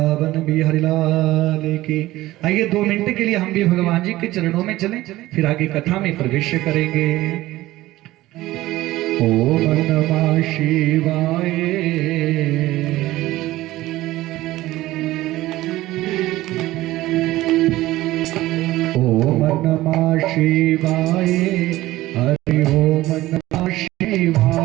बिहारी लाल की। आइए 2 मिनट के लिए हम भी भगवान जी के चरणों में चलें, फिर आगे कथा में प्रवेश करेंगे। ओम नमः शिवाय, ओम नमः शिवाय, हरि ओम नमः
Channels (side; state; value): left; quieter; 16.9 dB